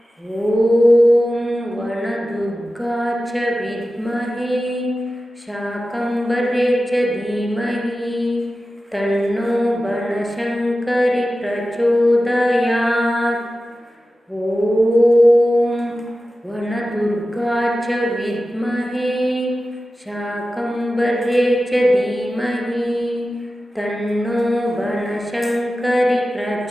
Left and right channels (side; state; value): both; normal; correlation 0.94